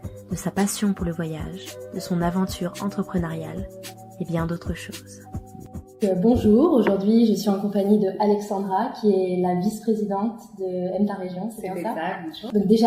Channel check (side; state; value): both; identical; correlation 1.00